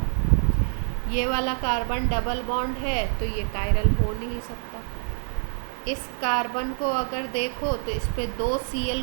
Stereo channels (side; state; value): left; silent; digital silence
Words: ये वाला कार्बन डबल बॉन्ड है तो ये कायरल हो नहीं सकता। इस कार्बन को अगर देखो तो इस पे 2